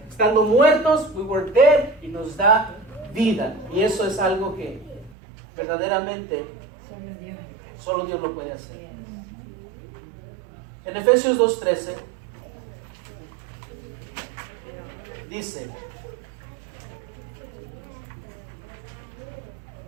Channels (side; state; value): left; drops out; at 5.2 s